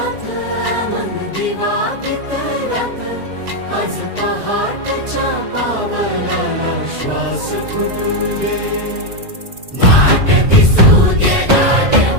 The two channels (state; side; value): late; left; 2.1 ms